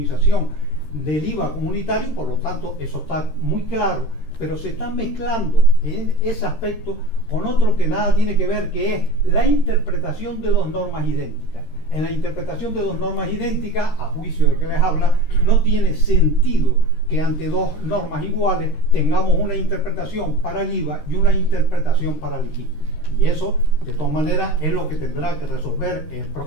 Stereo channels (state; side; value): late; right; 13 ms